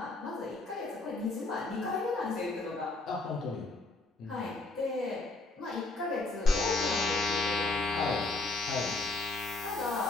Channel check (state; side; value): quieter; right; 3.1 dB